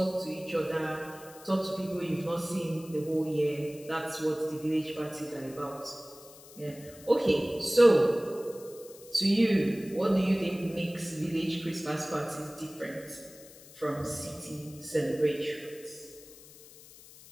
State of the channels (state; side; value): noise; left; hiss, 20 dB below the sound